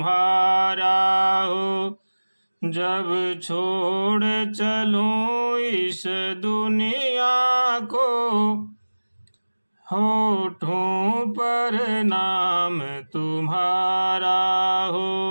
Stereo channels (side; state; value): both; inverted; correlation -1.00